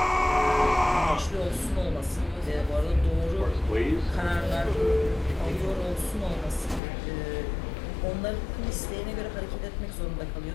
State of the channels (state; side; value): drops out; right; at 6.8 s